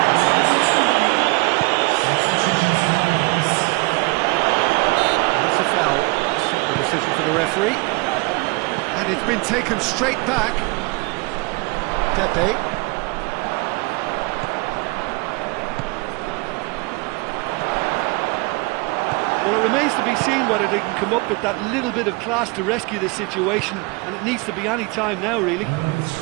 For the referee, and it's been taken straight back. Pepe. Well, it remains to be seen whether they can come up with that little bit of class to rescue this situation, and it needs to be any time now, really.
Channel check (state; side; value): quieter; left; 26.7 dB